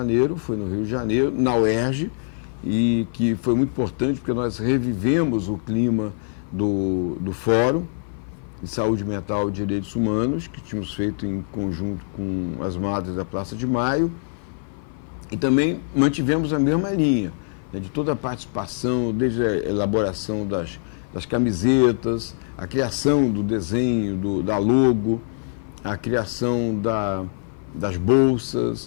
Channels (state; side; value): silent; right; 56 dB below the other